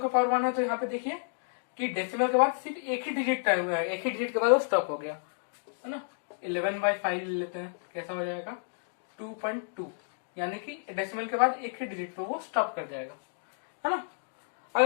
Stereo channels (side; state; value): right; silent; digital silence